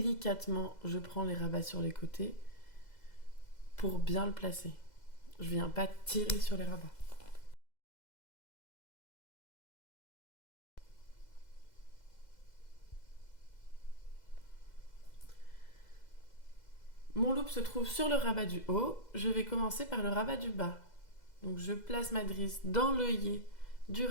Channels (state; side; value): late; right; 2.0 ms